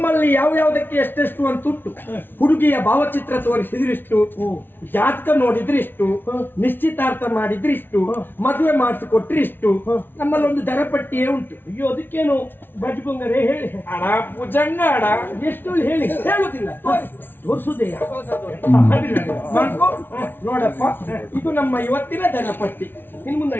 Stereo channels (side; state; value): right; late; 0.10 ms